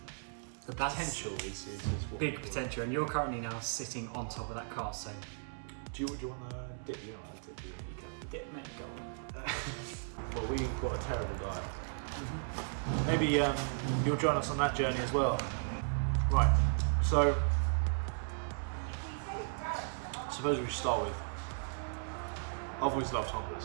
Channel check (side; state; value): left; silent; digital silence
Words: the potential is what big potential, and you're currently now sitting on top of that car, so... Do you want to dip? You don't want to dip, do you? Get me going. Well, we've got a terrible diet. Maybe you'll join us on that journey as well. Right, so suppose we should start with, I've always loved